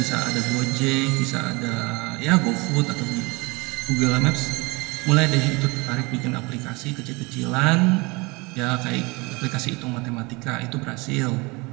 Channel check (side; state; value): left; quieter; 25.9 dB